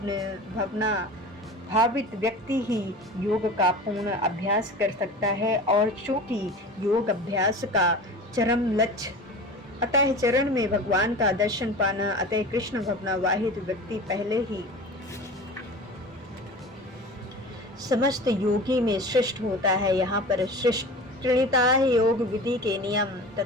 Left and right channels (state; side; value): normal; both; correlation 0.35